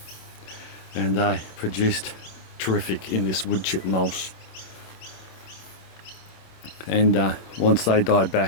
and they produced terrific in this wood chip mulch. And once they die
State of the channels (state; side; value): late; right; 27 ms